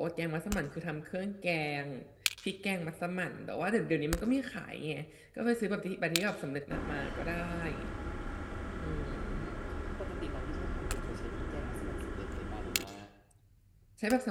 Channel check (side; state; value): both; identical; correlation 1.00